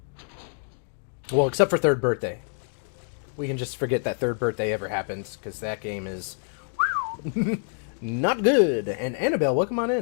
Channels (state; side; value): silent; right; 61 dB below the other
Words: Well, except for Third Birthday. We can just forget that Third Birthday ever happens, because that game is not good. And Annabelle, welcome on